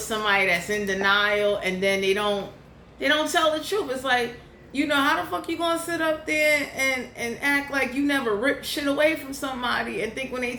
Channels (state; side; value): identical; both; correlation 1.00